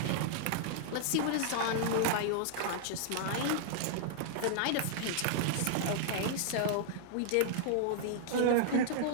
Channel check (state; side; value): different; both; correlation -0.01